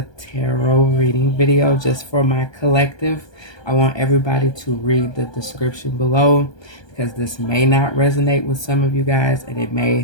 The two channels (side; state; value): right; late; 1.2 ms